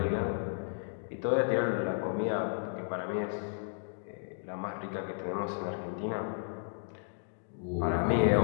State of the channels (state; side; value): silent; right; digital silence